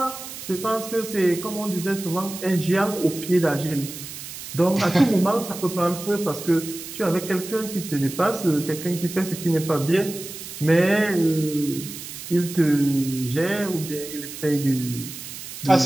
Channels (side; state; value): right; noise; hiss, 11 dB below the sound